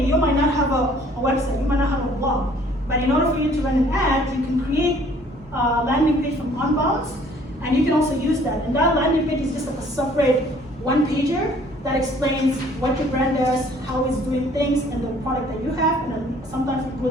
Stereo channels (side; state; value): both; normal; correlation 0.57